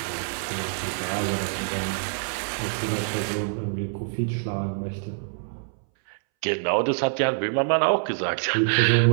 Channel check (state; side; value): silent; left; 61 dB below the other